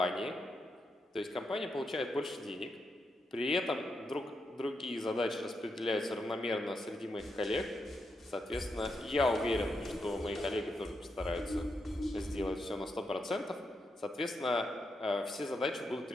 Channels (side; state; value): both; normal; correlation 0.84